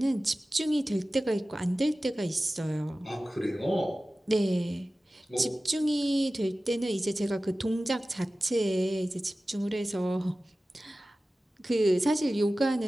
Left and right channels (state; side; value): normal; both; correlation 0.96